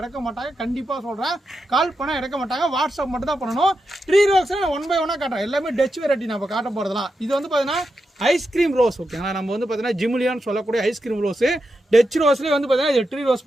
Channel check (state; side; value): normal; both; correlation 0.87